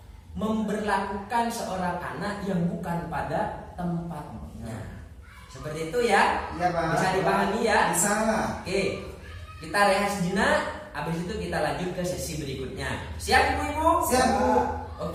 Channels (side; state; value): both; identical; correlation 1.00